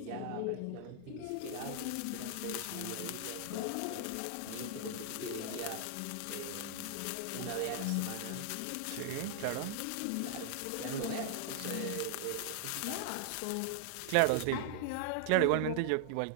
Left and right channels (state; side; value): different; both; correlation 0.00